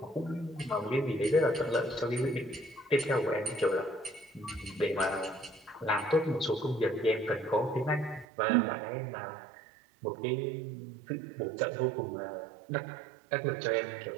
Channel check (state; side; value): drops out; left; at 8.2 s